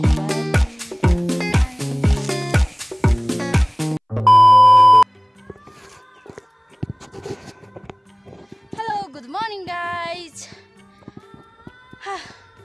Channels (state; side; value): identical; both; correlation 1.00